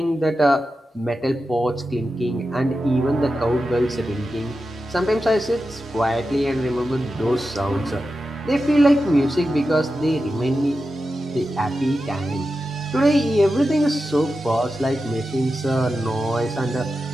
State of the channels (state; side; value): normal; both; correlation 0.91